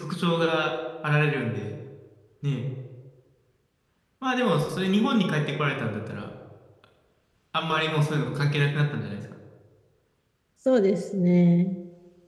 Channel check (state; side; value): identical; both; correlation 1.00